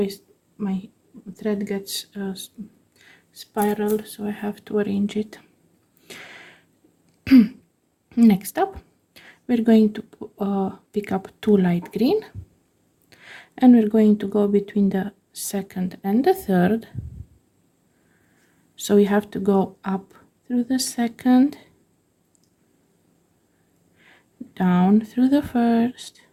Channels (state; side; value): identical; both; correlation 1.00